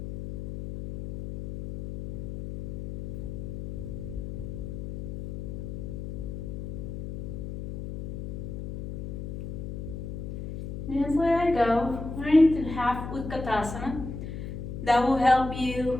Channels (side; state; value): left; noise; hum, 7 dB below the sound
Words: And just let it go. We're into half Utkatasana. That will help